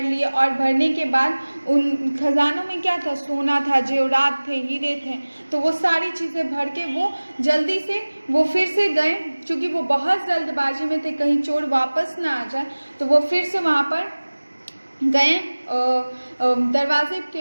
लिए, और भरने के बाद उन खजानों में क्या था? सोना था, जेवरात थे, हीरे थे। तो वो सारी चीज़ें भर के वो जल्दी से वो फिर से गए, क्योंकि वो बहुत जल्दबाजी में थे कहीं चोर वापस ना आ जाए। तो वो फिर से वहाँ पर गए दरवाजे के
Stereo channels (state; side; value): inverted; both; correlation -1.00